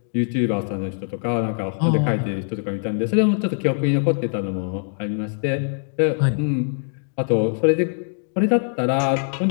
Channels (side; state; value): right; silent; digital silence